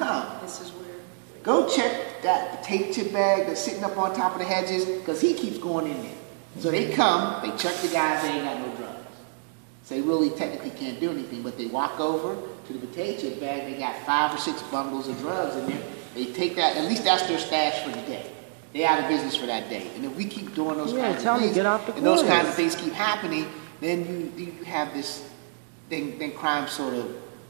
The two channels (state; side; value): silent; left; digital silence